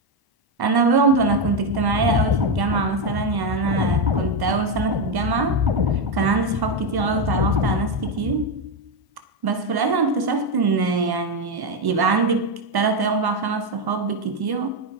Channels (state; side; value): late; left; 1.1 ms